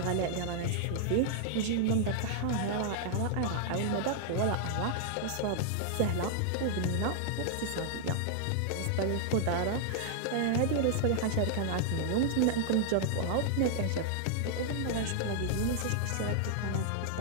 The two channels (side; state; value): both; different; correlation -0.01